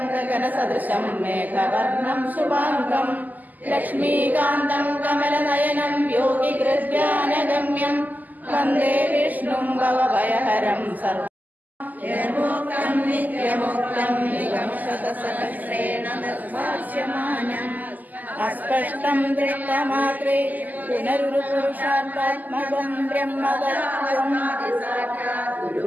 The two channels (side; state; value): left; late; 0.082 ms